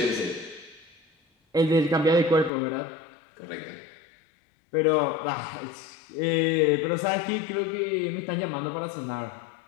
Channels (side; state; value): right; drops out; at 2.5 s